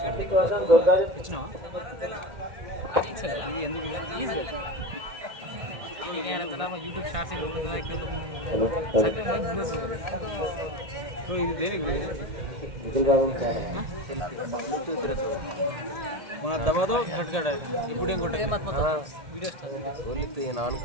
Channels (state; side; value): late; left; 1.8 ms